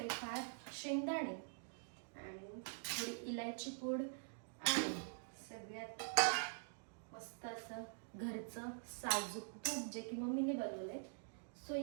शेंगदाणे आणि थोडी इलायची पूड आणि सगळ्यात मस्त असं घरचं साजूक तूप, जे की मम्मीने बनवलंय. सो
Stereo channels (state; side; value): silent; left; digital silence